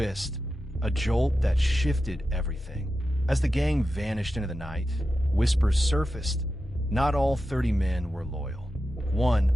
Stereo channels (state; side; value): normal; both; correlation 0.91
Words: a jolt that shifted everything. As the gang vanished into the night, whispers surfaced. Not all 30 men were loyal.